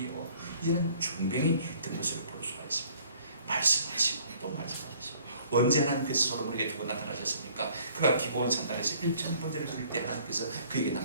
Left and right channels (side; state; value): both; inverted; correlation -0.57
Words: 이런 중병이 든 것을 볼 수가 있습니다. 말씀하시고 또 말씀하시고. 언제 하나님께서 솔로몬에게 두 번 나타나셨습니까? 그가 기브온 산단에서 1,000번째를 드릴 때 하나님께서 그에게